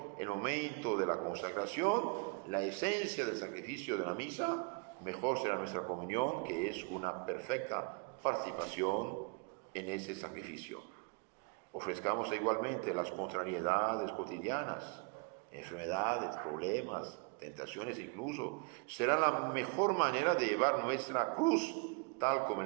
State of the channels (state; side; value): quieter; left; 34.0 dB